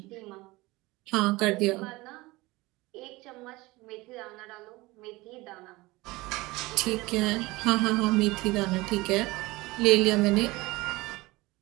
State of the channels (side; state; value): left; quieter; 21.3 dB